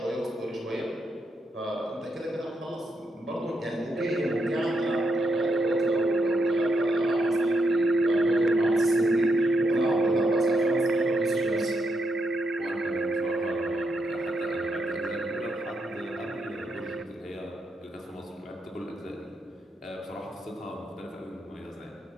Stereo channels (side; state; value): both; normal; correlation 0.81